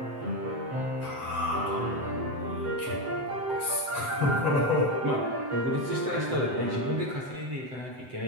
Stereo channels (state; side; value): late; left; 7.8 ms